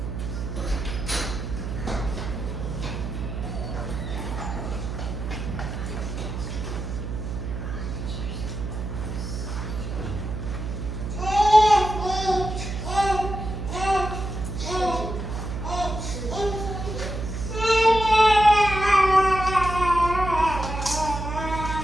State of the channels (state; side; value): noise; right; hum, 5 dB below the sound